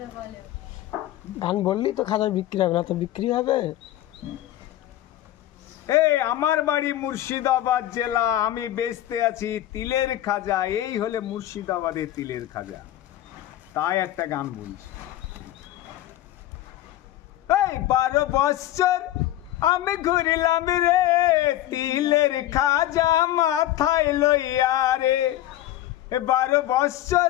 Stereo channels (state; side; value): quieter; right; 13.9 dB